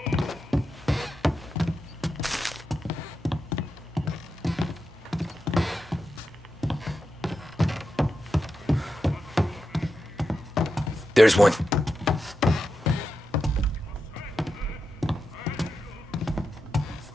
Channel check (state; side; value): normal; both; correlation 0.88